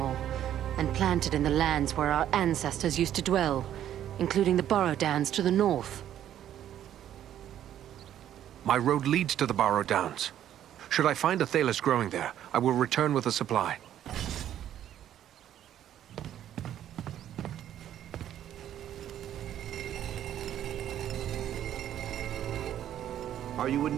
and planted in the lands where our ancestors used to dwell, including the Barrow Downs to the north. My road leads to the Barrow Downs. Should I find Athelas growing there, I will return with a supply. Are you in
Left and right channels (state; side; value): quieter; left; 11.1 dB